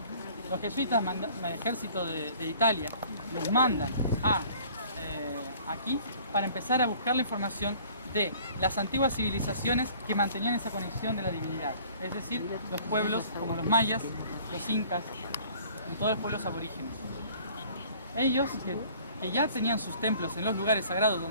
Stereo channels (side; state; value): both; inverted; correlation -0.52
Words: Los jesuitas, el ejército de Italia, los mandan aquí para empezar a buscar la información de las antiguas civilizaciones que mantenían esa conexión de la divinidad. Es decir, los pueblos como los mayas, los incas y todos los pueblos aborígenes. Ellos, que ya tenían sus templos en los lugares sagrados